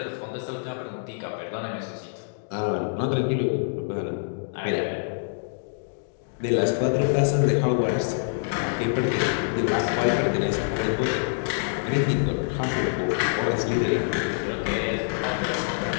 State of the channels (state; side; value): silent; right; digital silence